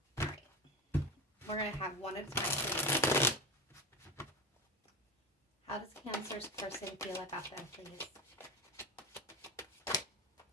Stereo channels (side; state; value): both; normal; correlation 0.22